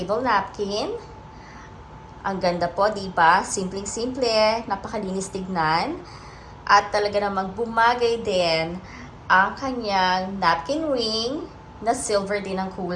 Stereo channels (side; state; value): both; identical; correlation 1.00